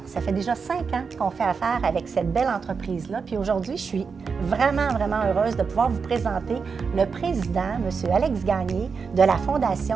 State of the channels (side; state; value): left; quieter; 5.5 dB